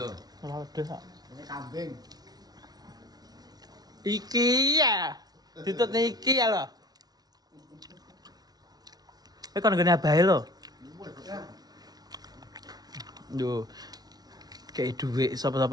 Sate wedhus kok. Ini kambing. Iki ya. Ditut iki ya lho. Kowe kon ngene abahe lho. Duh. Kayak duit,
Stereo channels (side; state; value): left; late; 0.19 ms